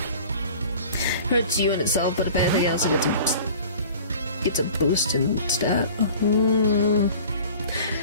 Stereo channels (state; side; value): inverted; both; correlation -0.44